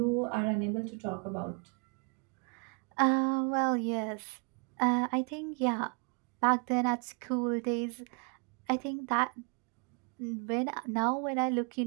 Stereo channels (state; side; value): quieter; left; 35.6 dB